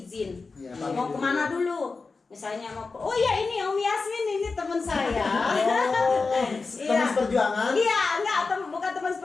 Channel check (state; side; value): quieter; right; 4.2 dB